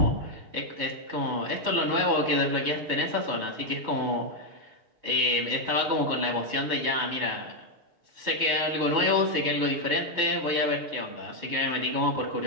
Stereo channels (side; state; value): left; late; 6.6 ms